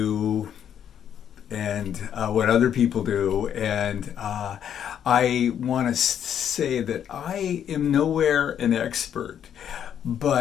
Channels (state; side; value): quieter; right; 9.2 dB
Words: and what other people do. And I want to say that I am nowhere an expert,